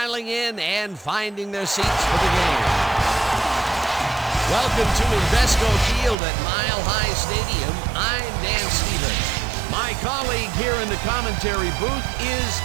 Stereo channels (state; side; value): drops out; left; at 6.2 s